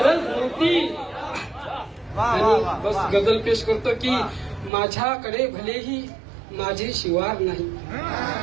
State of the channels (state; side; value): drops out; left; at 4.7 s